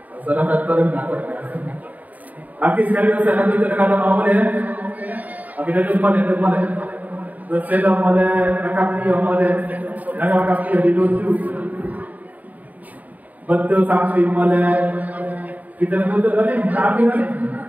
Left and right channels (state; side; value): late; left; 0.076 ms